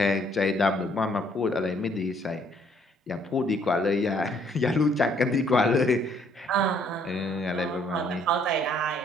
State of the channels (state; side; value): normal; both; correlation 0.65